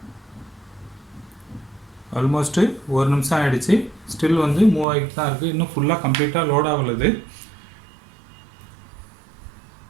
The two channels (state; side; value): drops out; left; at 4.9 s